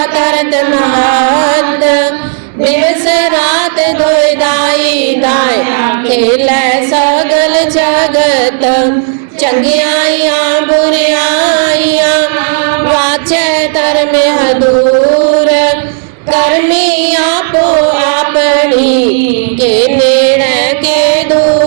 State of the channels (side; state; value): left; silent; digital silence